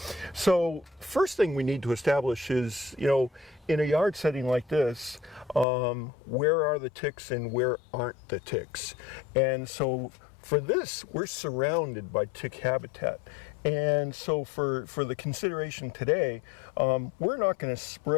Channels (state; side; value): drops out; right; at 5.7 s